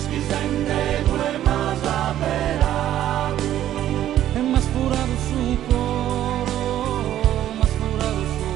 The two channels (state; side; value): quieter; left; 12.1 dB